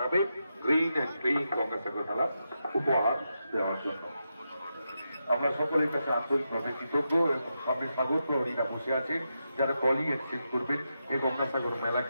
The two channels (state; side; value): inverted; both; correlation -0.86